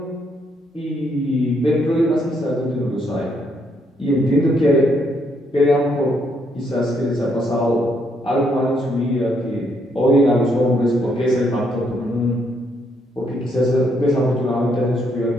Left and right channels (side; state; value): both; normal; correlation 0.73